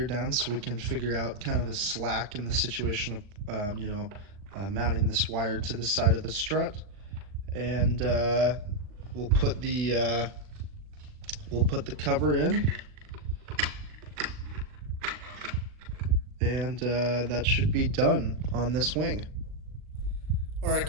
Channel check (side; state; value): left; late; 39 ms